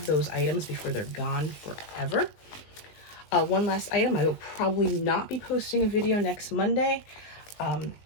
those items before they're gone forever. One last item, I will probably not be posting a video next Monday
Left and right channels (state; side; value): late; right; 19 ms